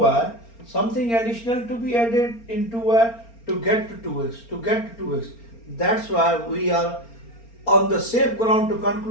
Something additional to be added into y to get to 2x. To get to 2x. That's why we are on the safe ground to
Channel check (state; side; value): late; right; 4.3 ms